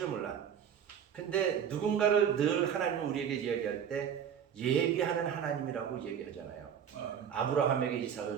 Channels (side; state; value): left; quieter; 8.4 dB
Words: 몰라. 근데 누군가를 늘 하나님은 우리에게 이야기할 때 예비하는 하나님이라고 얘기하잖아요. 아브라함에게